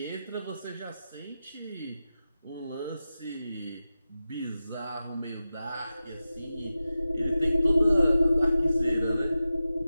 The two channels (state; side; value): inverted; both; correlation -0.93